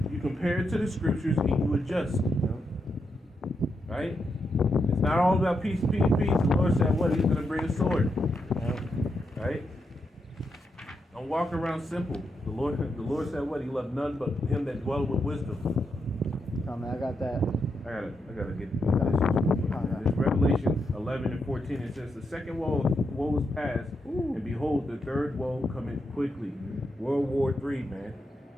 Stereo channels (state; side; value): normal; both; correlation 0.83